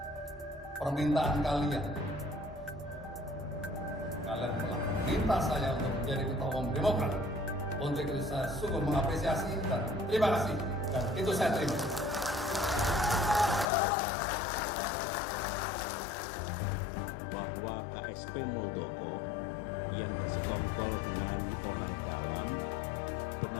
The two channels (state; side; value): drops out; right; at 13.7 s